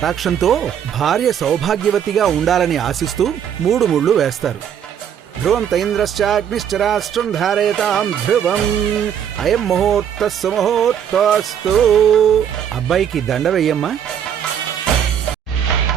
భార్య సౌభాగ్యవతిగా ఉండాలని ఆశిస్తూ 3 ముళ్ళు వేస్తారు. ధ్రువం తైంద్రశ్చాగ్నిశ్చరాష్ట్రం ధారయతాం ధ్రువం అయం ముహూర్త సుముహూర్తస్తు. అబ్బాయికి దండ వెయ్యమ్మా.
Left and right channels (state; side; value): quieter; left; 8.9 dB